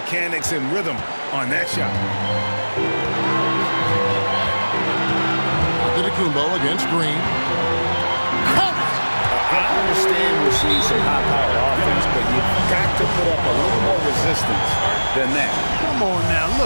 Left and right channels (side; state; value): both; inverted; correlation -1.00